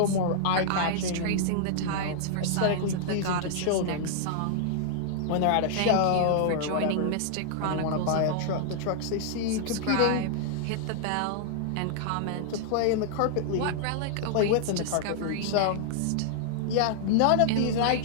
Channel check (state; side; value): different; both; correlation -0.01